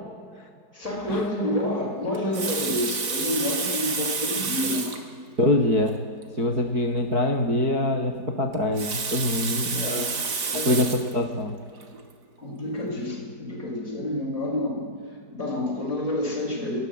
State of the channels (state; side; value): late; left; 5.0 ms